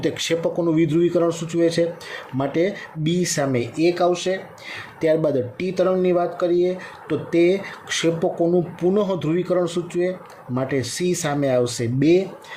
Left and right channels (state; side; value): identical; both; correlation 1.00